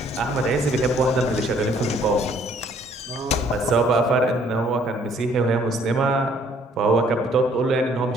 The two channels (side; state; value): both; normal; correlation 0.62